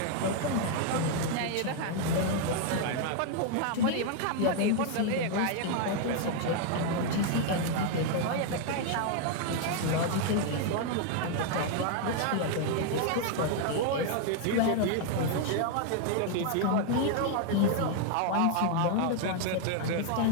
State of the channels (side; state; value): both; different; correlation 0.00